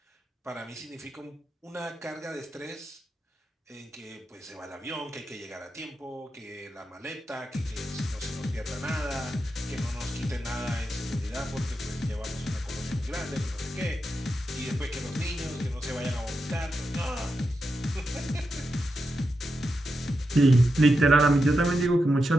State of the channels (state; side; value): normal; both; correlation 0.87